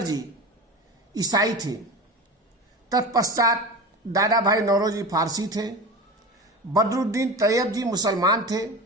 ईसाई थे, तत्पश्चात दादा भाई नौरोजी फारसी थे, बदरुद्दीन तैयब जी मुसलमान थे।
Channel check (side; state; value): both; normal; correlation 0.29